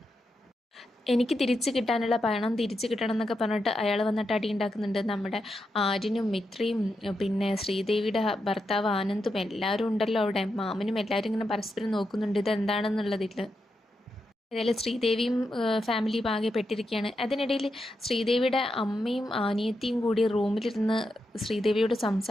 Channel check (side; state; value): both; normal; correlation 0.86